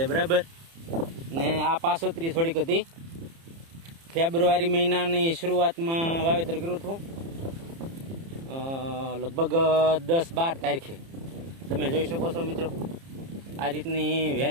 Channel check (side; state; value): left; late; 30 ms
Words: બરાબર. ને આ પાસોતરી થોડીક હતી. ફેબ્રુઆરી મહિનાની શરૂઆતમાં વાવેતર કર્યું હતું, લગભગ 10-12 તારીખે. તમે જોઈ શકો છો મિત્રો, આ રીતની